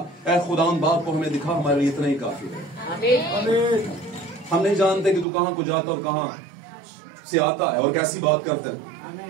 ऐ खुदावंद बाप को हमें दिखा, हमारे लिए इतना ही काफी है। हम नहीं जानते कि तू कहां को जाता और कहां से आता है और कैसी बात करता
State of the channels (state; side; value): drops out; left; at 5.2 s